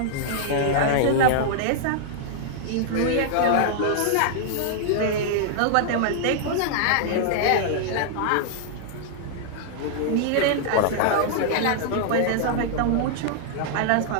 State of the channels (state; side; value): different; both; correlation -0.01